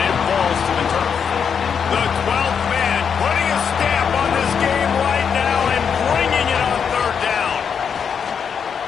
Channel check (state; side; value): quieter; right; 6.9 dB